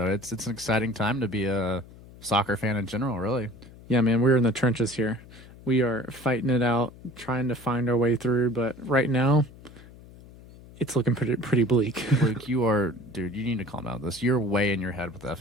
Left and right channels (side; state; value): left; noise; hum, 20 dB below the sound